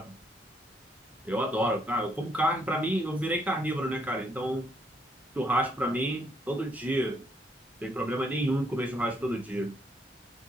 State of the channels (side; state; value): both; normal; correlation 0.71